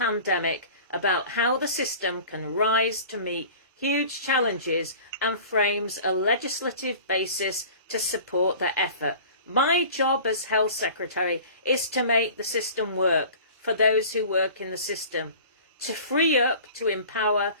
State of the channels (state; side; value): inverted; both; correlation -0.42